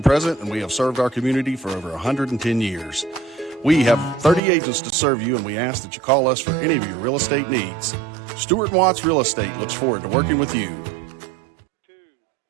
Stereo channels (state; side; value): drops out; left; at 4.4 s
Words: present, and we have served our community for over 110 years. We have 30 agents to serve you, and we ask that you call us for any of your real estate needs. Stewart and Watts Real Estate looks forward to working with you.